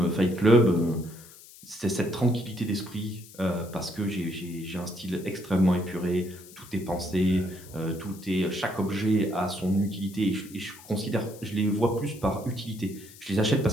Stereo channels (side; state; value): left; noise; hiss, 20 dB below the sound